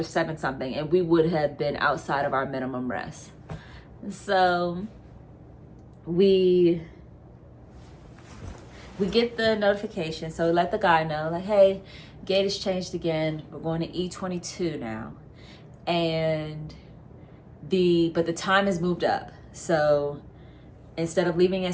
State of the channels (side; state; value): both; identical; correlation 1.00